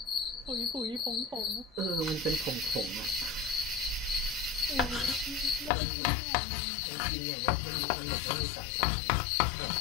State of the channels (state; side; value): drops out; right; at 5.7 s